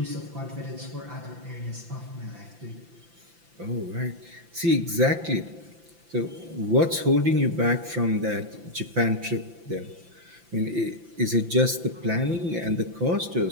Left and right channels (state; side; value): late; left; 5.9 ms